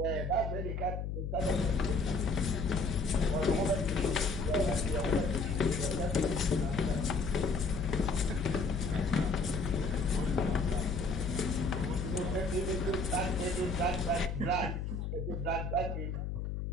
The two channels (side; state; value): left; noise; hum, 3 dB below the sound